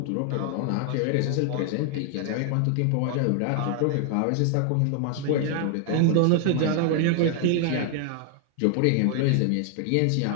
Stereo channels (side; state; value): both; different; correlation 0.00